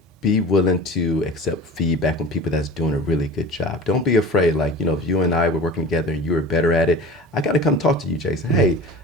Be willing to accept feedback from people that's doing a really good job. Don't be afraid. Like, if you and I were working together and you were better at it, I got to come talk to you, Jason. Hey,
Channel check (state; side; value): normal; both; correlation 0.37